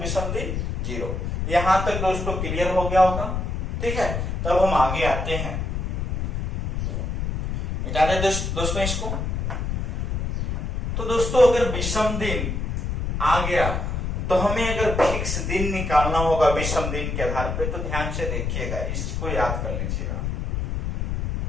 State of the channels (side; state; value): left; noise; rumble, 1 dB below the sound